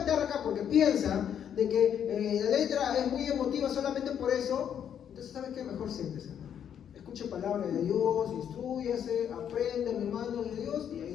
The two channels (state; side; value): quieter; right; 8.9 dB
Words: acá porque piensa de que la letra es muy emotiva solamente por eso, entonces ¿sabe qué? Mejor siéntese. Escuche palabra de Dios, instrúyase, aprenda mi mano de Dios y